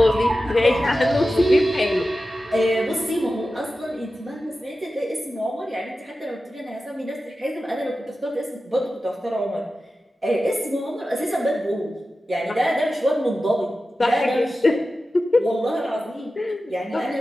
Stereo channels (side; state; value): both; normal; correlation 0.93